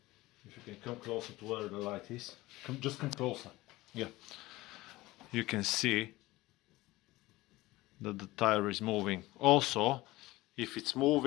to where the light is, just come closer. Yeah, you can see that the tire is moving. Also, if it's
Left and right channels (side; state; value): right; quieter; 19.1 dB